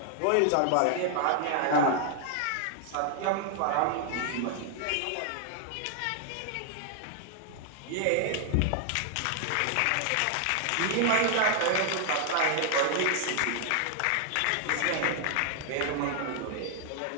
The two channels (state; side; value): different; both; correlation 0.00